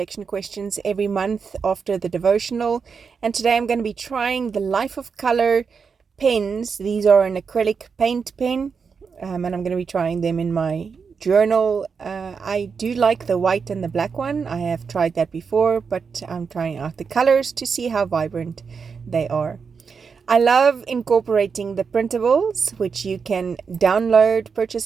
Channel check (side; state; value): left; quieter; 5.7 dB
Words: questions every month after the devotional, and today I'm going to be trying the Life of Color pens. These are an acrylic paint pen, and I'm going to be trying them in my journal. I do like the white and the black one. I have tried that before, but I'm trying out the colors to see how vibrant they are. I love incorporating the printables, which you can